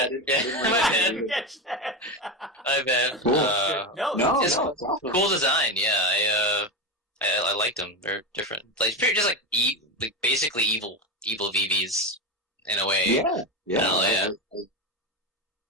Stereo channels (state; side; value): normal; both; correlation 0.16